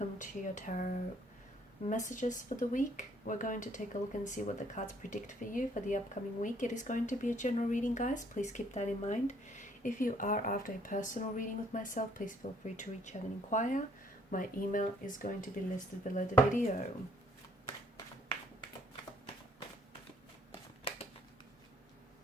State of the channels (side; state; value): both; normal; correlation 0.63